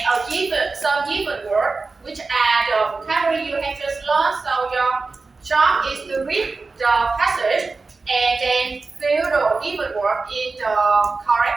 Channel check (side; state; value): left; quieter; 4.0 dB